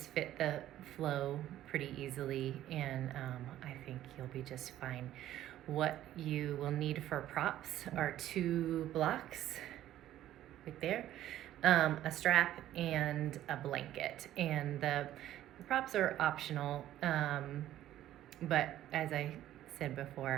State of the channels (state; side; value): quieter; left; 13.0 dB